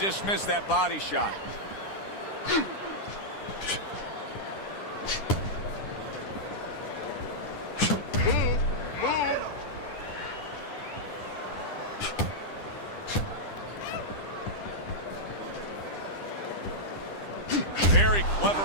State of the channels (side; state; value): right; late; 9.9 ms